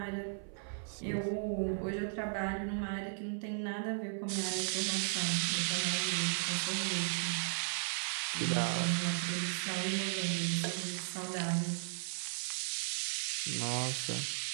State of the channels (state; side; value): silent; left; 54 dB below the other